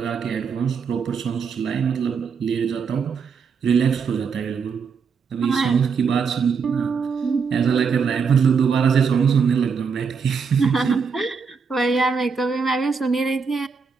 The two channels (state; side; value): quieter; left; 5.8 dB